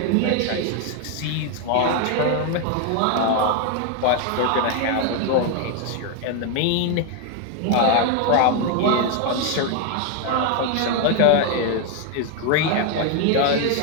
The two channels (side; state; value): both; different; correlation 0.01